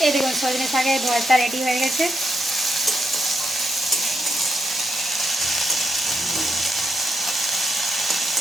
এই দেখুন সজনে শাকের ভর্তা রেডি হয়ে গেছে।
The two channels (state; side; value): normal; both; correlation 0.83